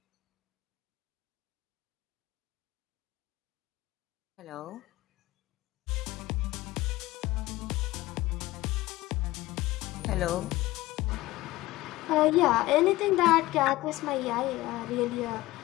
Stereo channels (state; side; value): quieter; right; 18.1 dB